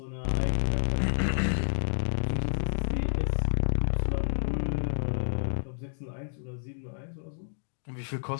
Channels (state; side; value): silent; right; digital silence